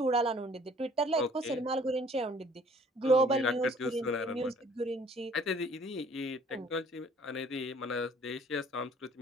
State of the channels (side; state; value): both; normal; correlation 0.56